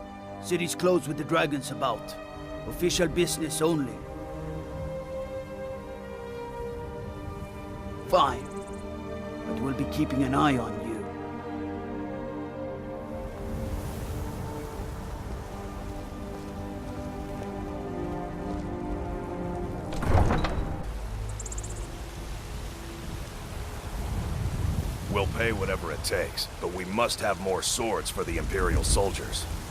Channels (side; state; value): both; identical; correlation 1.00